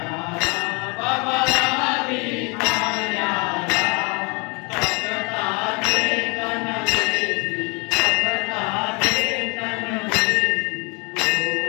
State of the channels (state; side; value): quieter; right; 30.0 dB